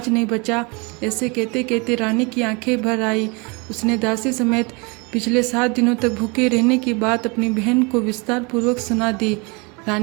नहीं बचा। ऐसे कहते कहते रानी की आंखें भर आई। उसने दासी समेत पिछले 7 दिनों तक भूखे रहने की बात अपनी बहन को विस्तार पूर्वक सुना दी।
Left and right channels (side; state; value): left; quieter; 29.5 dB